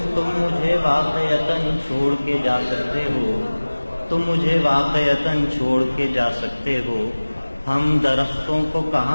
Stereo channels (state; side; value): inverted; both; correlation -1.00